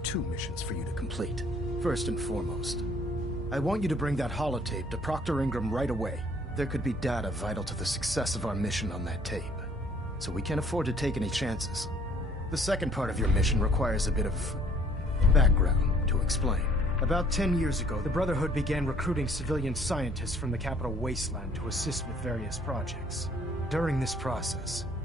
2 missions for you to complete. First and foremost, I want you to bring that holotape to Proctor Ingram right away. There could be data vital to the success of our mission on that tape, so we can't afford to take any chances. The second part of your mission requires a bit of background to explain. About 10 years ago, the Brotherhood began recruiting civilian scientists from the capital wasteland to assist with various projects. During this process,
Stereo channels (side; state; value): both; normal; correlation 0.59